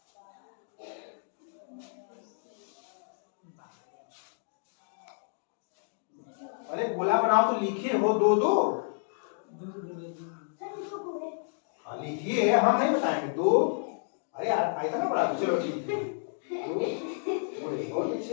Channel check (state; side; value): silent; right; digital silence